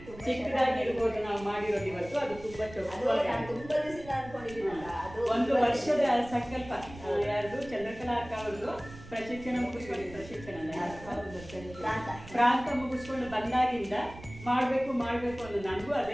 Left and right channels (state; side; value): noise; right; rumble, 17 dB below the sound